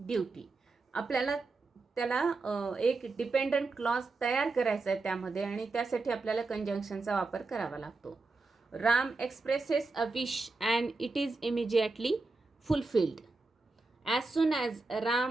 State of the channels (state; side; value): quieter; left; 3.6 dB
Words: आपल्याला त्याला एक डिपेंडंट क्लॉज तयार करायचा आहे त्यामध्ये, आणि त्यासाठी आपल्याला कंजंक्शनचा वापर करावा लागतो. Ram expresses a wish and it is immediately fulfilled. As soon as